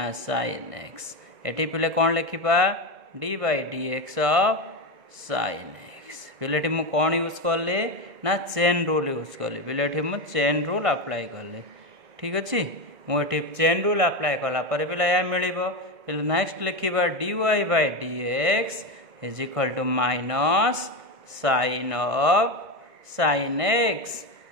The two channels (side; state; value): left; late; 1.6 ms